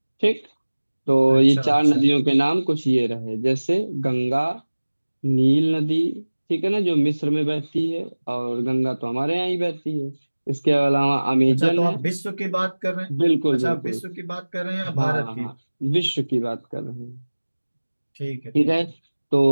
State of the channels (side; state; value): both; inverted; correlation -1.00